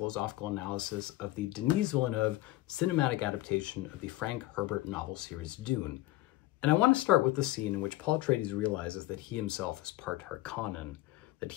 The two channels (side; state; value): right; quieter; 17.6 dB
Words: analysis of the Denis Villeneuve cinematic adaptation of the Frank Herbert novel series Dune. And I want to start with the scene in which Paul Atreides realizes that he himself is part Harkonnen, that